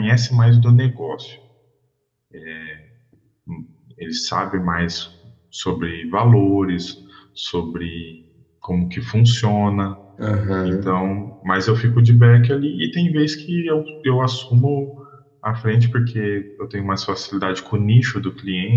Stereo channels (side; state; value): both; identical; correlation 1.00